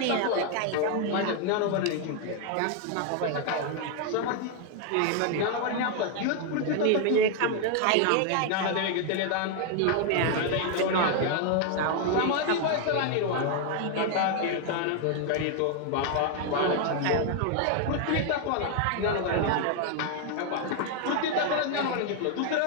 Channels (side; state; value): both; different; correlation 0.00